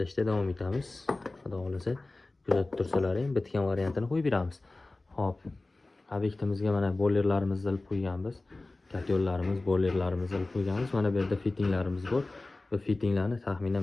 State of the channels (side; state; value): right; quieter; 3.1 dB